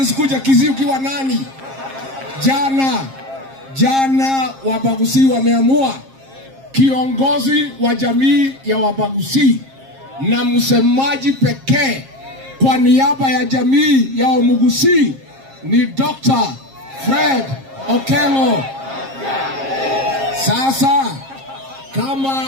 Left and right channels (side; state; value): left; late; 7.5 ms